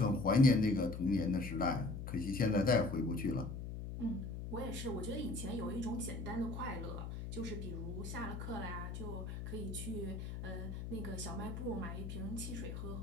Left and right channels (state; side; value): noise; left; hum, 6 dB below the sound